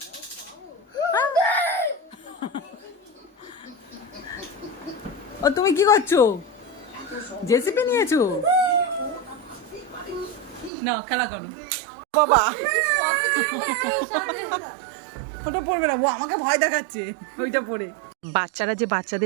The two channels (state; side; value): drops out; left; at 10.7 s